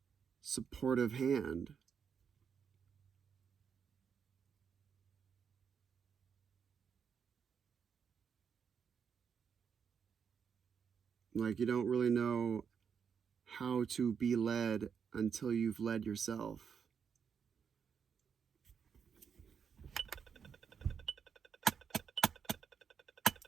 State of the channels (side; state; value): left; quieter; 6.9 dB